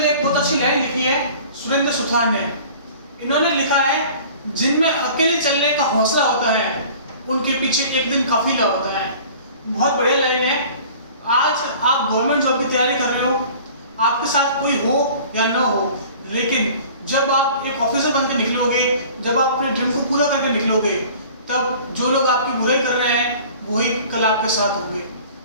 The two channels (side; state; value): both; inverted; correlation -0.46